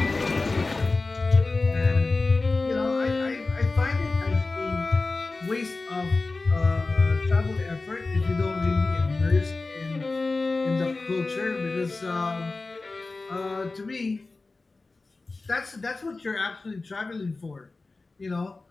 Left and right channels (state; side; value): quieter; right; 3.6 dB